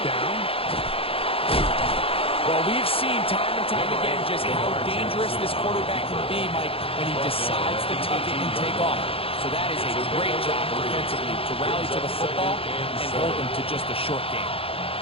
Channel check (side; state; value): right; late; 0.27 ms